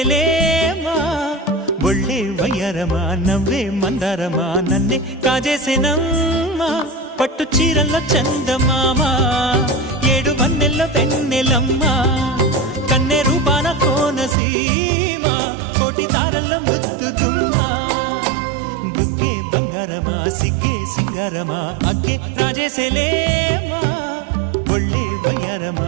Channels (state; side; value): drops out; left; at 14.4 s